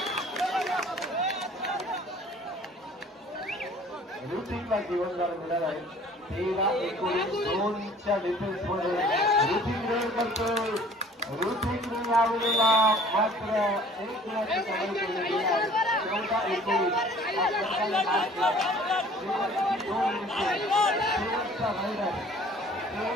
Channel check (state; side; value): normal; both; correlation 0.51